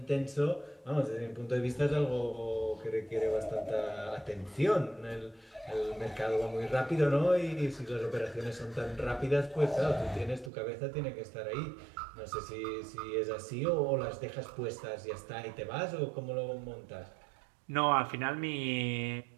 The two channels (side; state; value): left; drops out; at 10.5 s